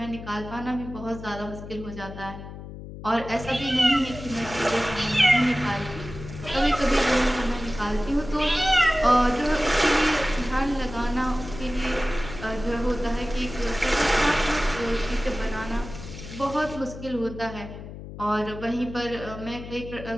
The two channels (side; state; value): left; noise; hum, 12 dB below the sound